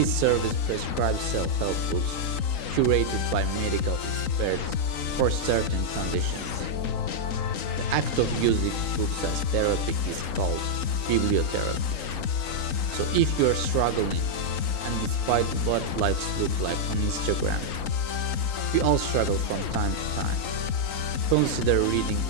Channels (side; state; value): right; late; 3.9 ms